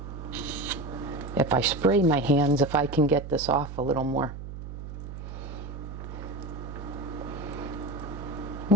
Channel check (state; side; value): noise; right; hum, 10 dB below the sound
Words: if I spray my hands, if I can get this off a little more.